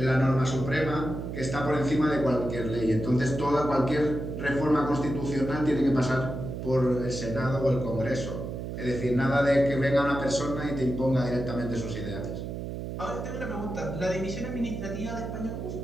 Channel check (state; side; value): noise; right; hum, 6 dB below the sound